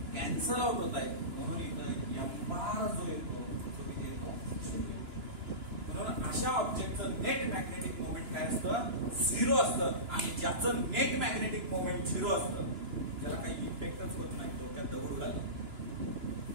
कॅन्सल आउट होत आहेत. म्हणून इथं एम्बार जो येतो तो किती येतो, 0. म्हणून अशा ऑब्जेक्टचं नेट मॅग्नेटिक मोमेंट काय असतं, 0 असतं. आणि ज्याचं नेट मॅग्नेटिक मोमेंट 0 असतं, ज्याला काही इफेक्टच होत नाही, डोक्यात दगड घालतो,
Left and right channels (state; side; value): late; left; 2.9 ms